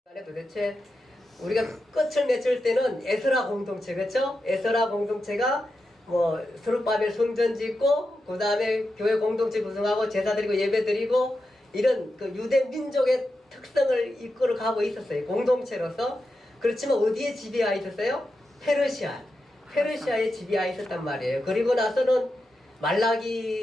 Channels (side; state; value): both; normal; correlation 0.89